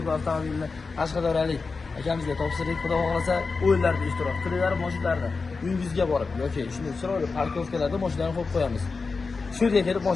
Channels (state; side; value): quieter; right; 4.4 dB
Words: avtomobilini Qashqadaryolik akamizga topshirdik. Xudo xohlasa o'yinlarda ishtirok qilinglar, mashinalarda uyingizga borib yoki shunday chiroyli parkovkalarda mashinalarni qo'yib qo'yamiz. Shu yerga kelib